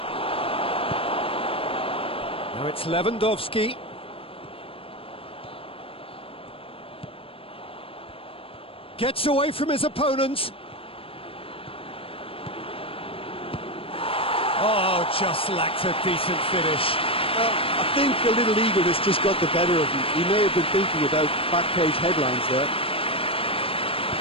Now it's Lewandowski. Gets away from his opponent. Oh, just lacked a decent finish. I think a little eagerness just got the better of him. He may have been thinking about back-page headlines there.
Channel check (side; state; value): right; late; 0.27 ms